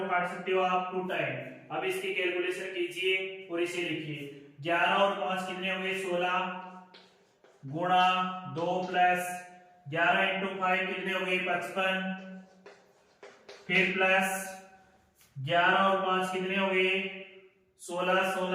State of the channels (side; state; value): both; identical; correlation 1.00